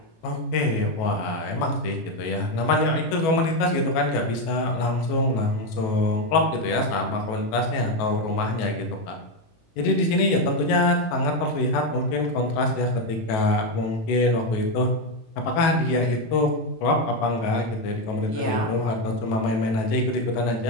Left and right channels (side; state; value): right; late; 18 ms